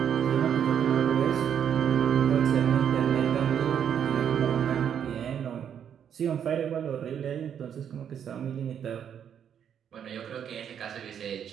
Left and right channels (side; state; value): left; quieter; 8.6 dB